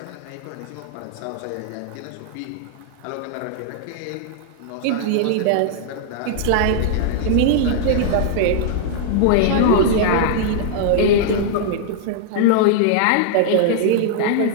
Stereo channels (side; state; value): both; different; correlation -0.01